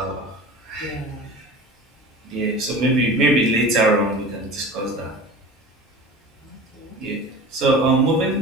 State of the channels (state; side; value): normal; both; correlation 0.36